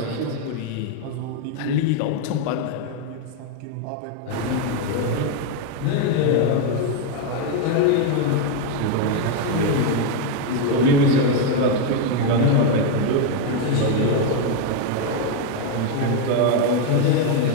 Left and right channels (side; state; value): both; different; correlation 0.01